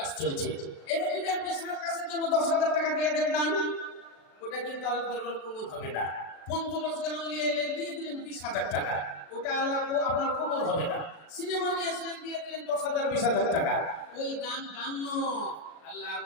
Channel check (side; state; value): right; late; 36 ms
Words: চলছে। এবার যদি আপনি সার্কাসের জন্য 10,000 টাকা দিয়ে দেন দান, ওটা কিন্তু আল্লাহ দরবার কবুল হবে না। 50 গান নিয়ে এলেন দিয়ে দিলেন 20,000 টাকা, ওটা আল্লাহ আপনার কবুল হবে না। সিনেমা নিয়েছিলেন দিয়ে দিলেন 10,000 20,000 টাকা, ওই গান গান নয়। আল্লাহ